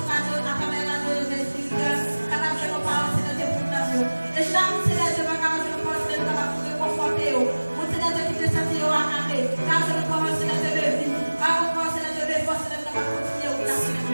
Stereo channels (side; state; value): both; inverted; correlation -1.00